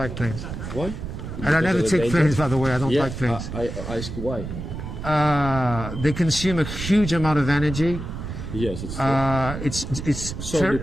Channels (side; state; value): right; noise; rumble, 7 dB below the sound